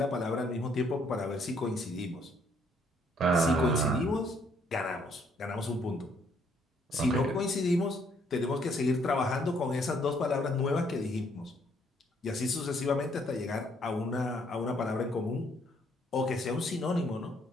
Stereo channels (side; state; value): both; normal; correlation 0.67